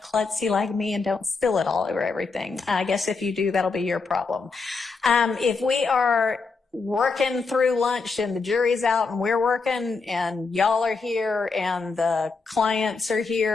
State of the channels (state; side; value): quieter; right; 4.3 dB